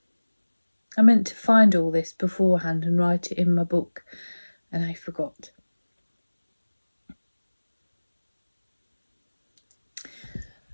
I meant to find all this beforehand and write it in my book, and I forgot.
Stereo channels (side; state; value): both; inverted; correlation -1.00